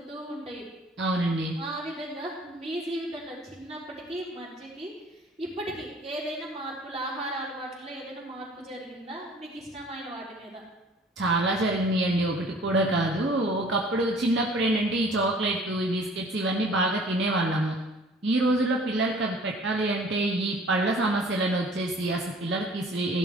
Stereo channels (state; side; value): normal; both; correlation 0.51